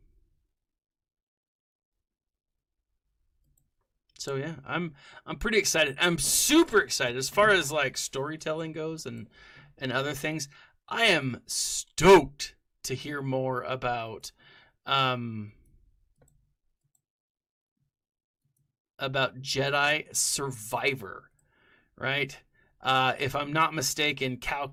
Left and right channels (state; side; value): identical; both; correlation 1.00